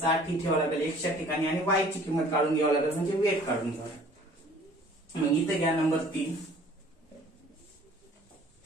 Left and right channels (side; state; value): both; normal; correlation 0.52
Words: ही ठेवावं लागेल एक्सच्या ठिकाणी, आणि वाय ची किंमत काढून घ्यावं लागेल म्हणजे वेट काढून घ्यावं लागेल. मग इथे घ्या number 3,